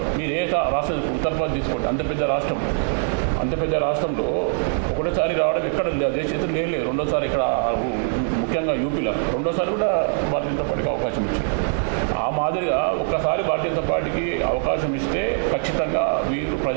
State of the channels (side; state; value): left; silent; 64 dB below the other